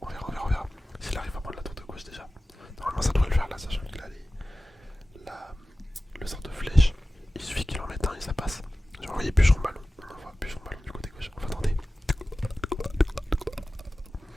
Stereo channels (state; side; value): normal; both; correlation 0.96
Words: S'il arrive à prendre la tour de gauche déjà. Normalement, ça devrait le faire là, sachant qu'il a le sort de flèche. Il suffit qu'il en mette un et ça passe. J'ai envoyé bûcheron ballon. On envoie bûcheron ballon du côté gauche. On va tenter.